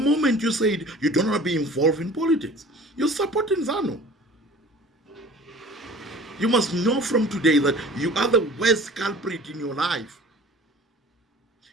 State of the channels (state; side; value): normal; both; correlation 0.45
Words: you said you don't want to be involved in politics, you're supporting ZANU. You must know from today that you are the worst culprit in your life.